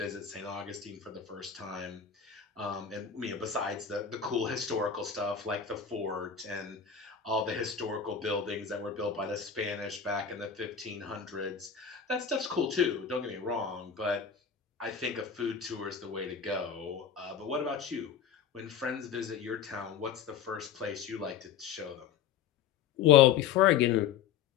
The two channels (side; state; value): right; quieter; 7.7 dB